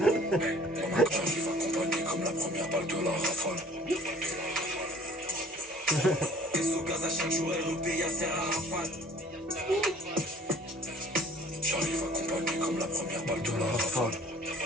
J'arrive accompagné comme la première balle de la rafale. Au gaz à chaque jour, elle repaye à Serre à Rafale. J'arrive accompagné comme la première balle de la rafale.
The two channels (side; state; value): both; normal; correlation 0.54